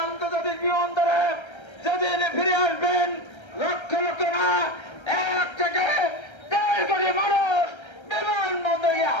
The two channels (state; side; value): late; right; 1.3 ms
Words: আন্তর্জাতিক বিমানবন্দরে যেদিন ফিরে আসবেন লক্ষ লক্ষ না 1 থেকে 1.5 কোটি মানুষ বিমানবন্দরে